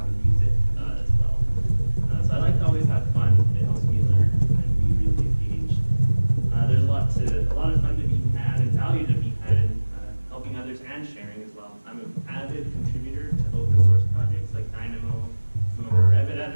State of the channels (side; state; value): both; inverted; correlation -1.00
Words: to use it as well. So I like to always have fun. It helps me learn and be really engaged. There's a lot of fun to be had and value to be had in helping others and sharing as well. I'm an avid contributor to open source projects like Dynamo. Some of our Revit